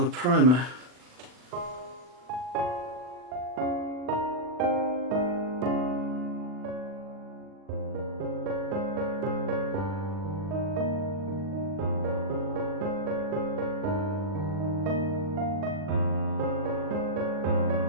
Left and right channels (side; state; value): left; late; 40 ms